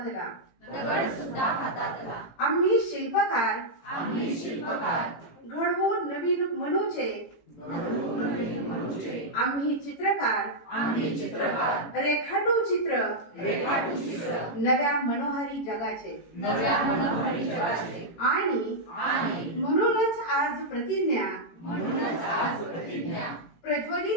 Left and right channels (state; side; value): late; right; 18 ms